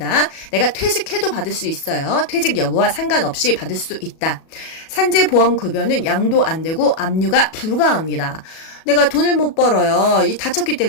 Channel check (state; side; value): late; right; 37 ms